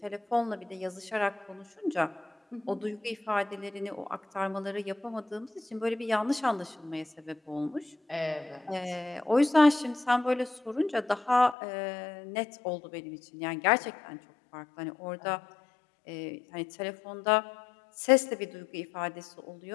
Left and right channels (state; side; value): drops out; right; at 11.6 s